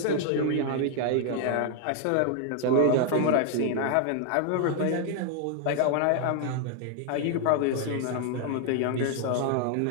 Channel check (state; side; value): different; both; correlation 0.00